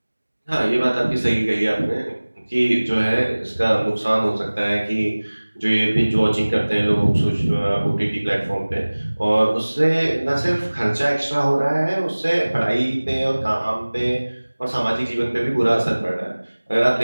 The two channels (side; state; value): both; inverted; correlation -1.00